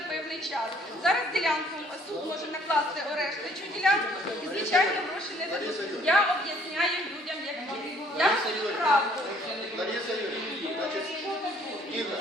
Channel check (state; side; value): normal; both; correlation 0.60